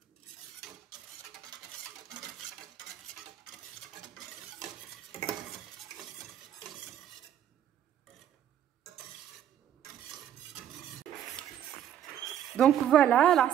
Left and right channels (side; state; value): left; quieter; 10.3 dB